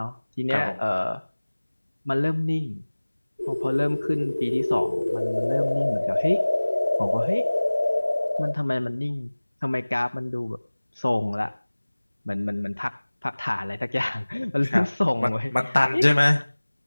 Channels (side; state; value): both; inverted; correlation -1.00